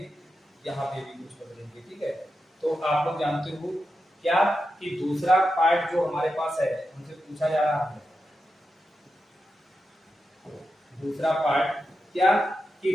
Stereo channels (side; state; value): both; normal; correlation 0.89